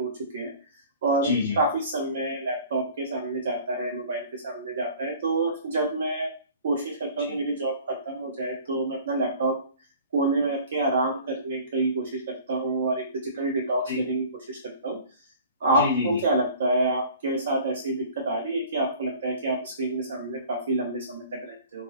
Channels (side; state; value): both; inverted; correlation -0.48